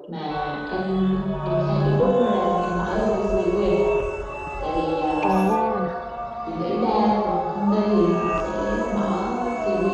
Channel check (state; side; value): identical; both; correlation 1.00